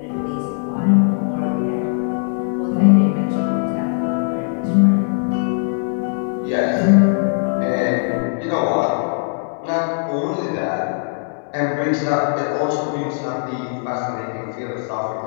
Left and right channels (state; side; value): silent; right; digital silence